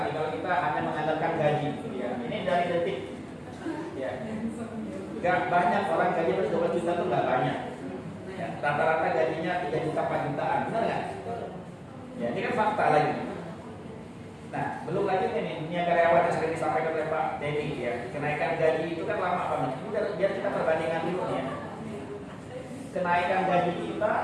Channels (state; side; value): identical; both; correlation 1.00